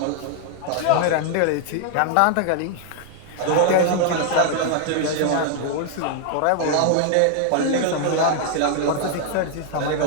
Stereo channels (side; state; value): both; different; correlation 0.00